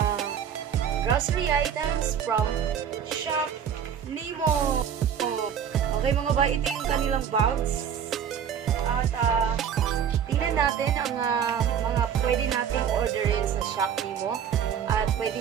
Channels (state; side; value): quieter; left; 8.3 dB